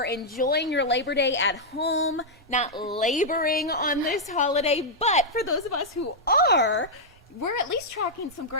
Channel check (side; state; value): both; normal; correlation -0.05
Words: enjoying your Labor Day at home, not laboring on this holiday. But for those of us who are, we're at least tracking some